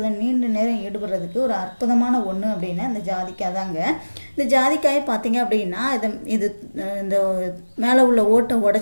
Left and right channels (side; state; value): both; inverted; correlation -1.00